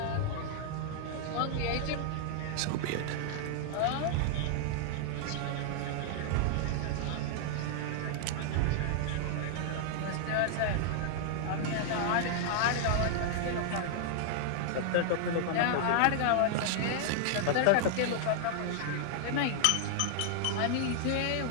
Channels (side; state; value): both; different; correlation 0.00